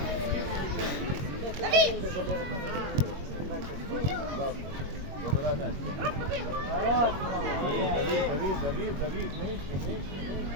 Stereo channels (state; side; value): late; left; 22 ms